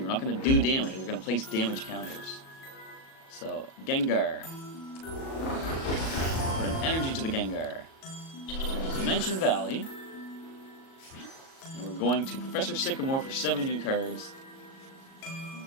We're not going to do damage. We're going to place damage counters. So, Gengar. Put an energy to the Gengar. Dimension Valley. And we're going to Professor Sycamore for 7 new cards.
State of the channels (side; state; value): right; late; 37 ms